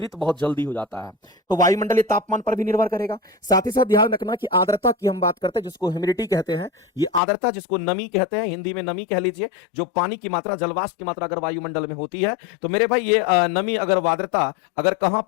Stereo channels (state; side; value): drops out; right; at 7.2 s